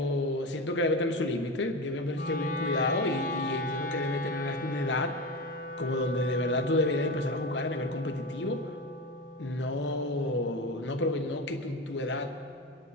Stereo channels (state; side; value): normal; both; correlation 0.23